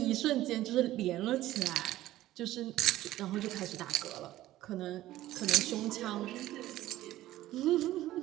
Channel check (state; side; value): quieter; left; 15.0 dB